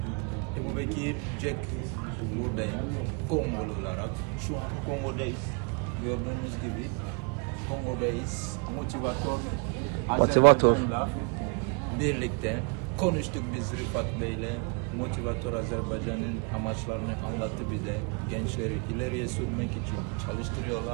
Ebu Bekir Jack buradayım. Kongolu olarak. Şu an Kongo'dayız. Gördüğünüz gibi Kongo'dayız. Motivator Azerbaycan'la birlikte konuştuk biz Rıfat Bey'le. Motivator Azerbaycan'ın amaçlarını anlattı bize. Gençleri ileriye sürmek için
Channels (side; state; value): left; quieter; 34.9 dB